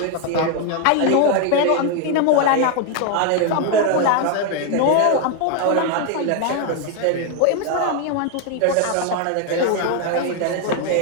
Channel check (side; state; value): both; different; correlation 0.01